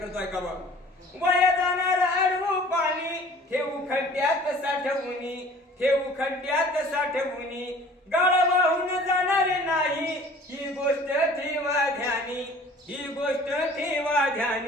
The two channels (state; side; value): normal; both; correlation 0.49